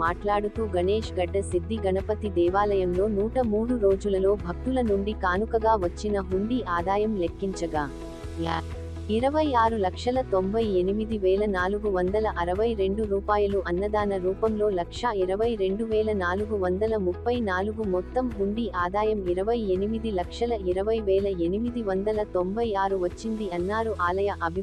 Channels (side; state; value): both; identical; correlation 1.00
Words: మాట్లాడుతూ గణేష్ గడ్డ సిద్ధి గణపతి దేవాలయంలో 103 రోజులలో భక్తుల నుండి కానుకగా వచ్చిన హుండీ ఆదాయం లెక్కించగా 26,98,462 రూపాయలు, అన్నదాన రూపంలో 1,22,434 మొత్తం హుండీ ఆదాయం 28,20,896 వచ్చింది అన్నారు. ఆలయ